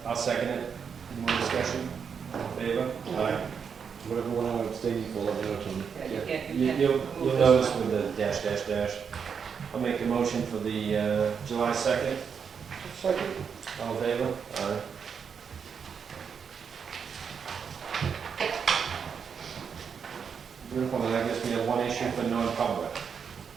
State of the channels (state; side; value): quieter; left; 6.6 dB